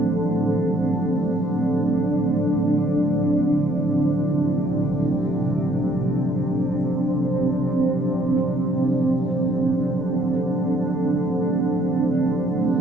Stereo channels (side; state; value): both; normal; correlation 0.64